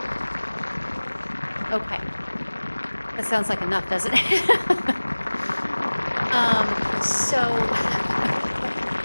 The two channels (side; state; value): both; inverted; correlation -1.00